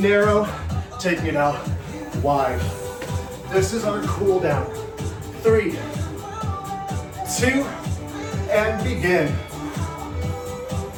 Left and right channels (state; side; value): identical; both; correlation 1.00